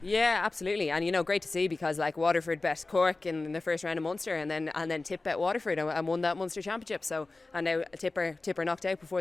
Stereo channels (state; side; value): quieter; right; 3.3 dB